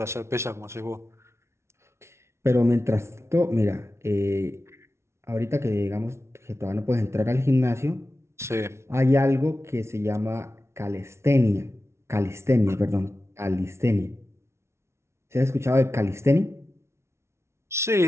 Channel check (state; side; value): late; left; 0.13 ms